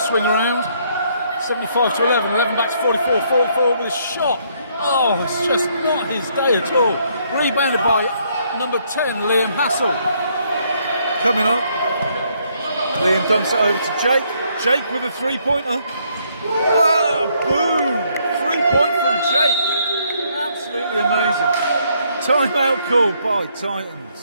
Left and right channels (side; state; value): both; inverted; correlation -0.70